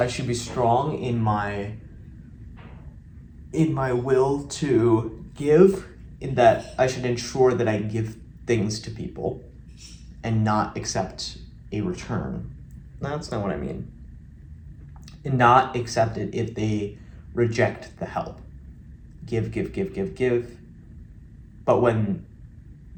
should be strong in my will to give, in that I should ensure that I give things to people and not accept a return. That's not what I mean. And not accept it if they reject the help. Give. But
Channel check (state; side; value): identical; both; correlation 1.00